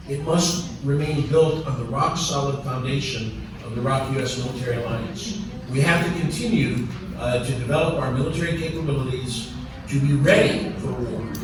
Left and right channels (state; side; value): identical; both; correlation 1.00